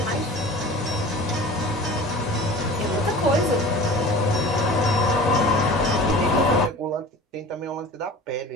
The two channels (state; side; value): normal; both; correlation 0.39